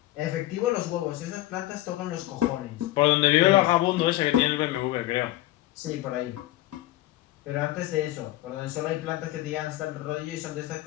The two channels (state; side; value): quieter; right; 16.2 dB